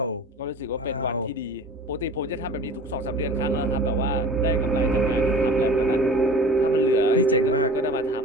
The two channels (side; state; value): both; normal; correlation 0.41